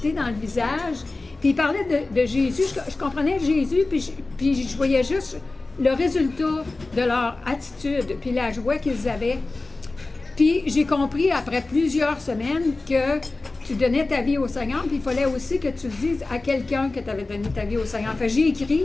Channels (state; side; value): quieter; right; 3.3 dB